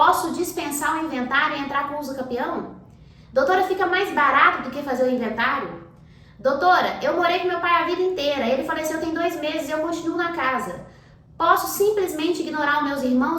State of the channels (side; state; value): both; identical; correlation 1.00